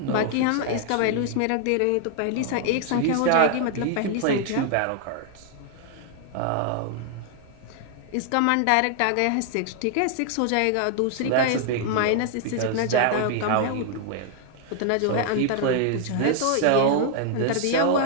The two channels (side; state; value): both; different; correlation 0.00